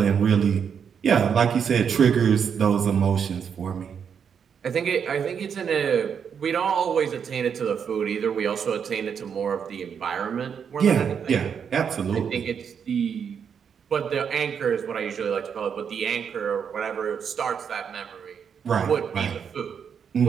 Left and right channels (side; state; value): left; quieter; 7.2 dB